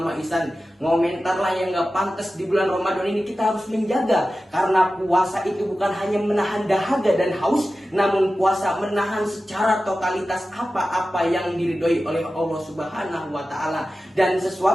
Islam. Ngomentarlah yang gak pantas di bulan Ramadan ini. Kita harus menjaga, karena puasa itu bukan hanya menahan dahaga dan haus, namun puasa menahan secara totalitas apa-apa yang diridhoi oleh Allah Subhanahu wa Ta'ala. Dan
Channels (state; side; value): normal; both; correlation 0.94